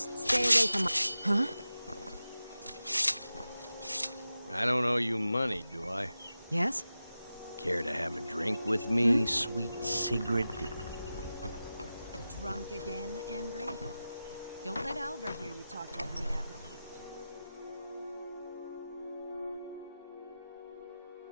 stay away from my... Huh? I don't owe you money, do I? Yes? Care to have a drink with me, sweet Sigrid? Drunk again, Embry? Don't let Alvar hear you talk like that.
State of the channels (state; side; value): inverted; both; correlation -0.94